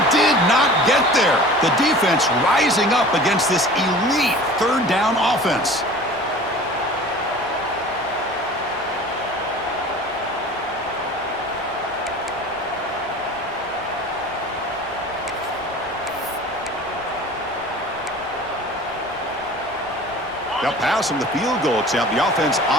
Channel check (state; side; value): noise; left; rumble, 26 dB below the sound